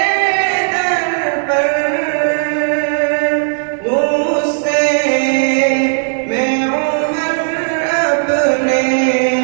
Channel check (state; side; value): silent; left; digital silence